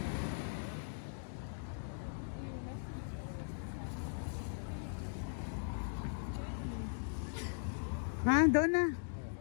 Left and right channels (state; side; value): silent; right; digital silence